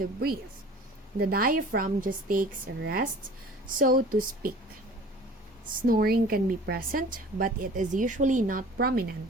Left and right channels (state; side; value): normal; both; correlation 0.45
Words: breathe. The diaphragm just takes a rest, so to speak. Snoring can be present, but it is usually not